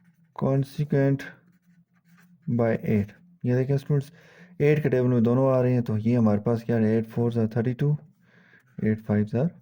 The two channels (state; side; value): identical; both; correlation 1.00